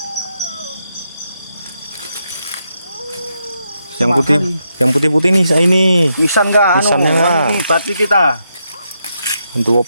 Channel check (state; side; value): inverted; both; correlation -0.82